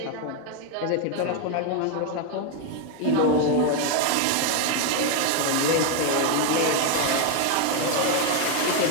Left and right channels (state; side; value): different; both; correlation 0.01